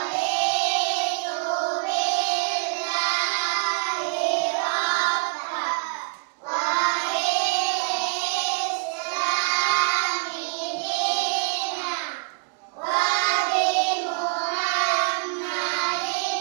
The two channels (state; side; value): quieter; left; 38.1 dB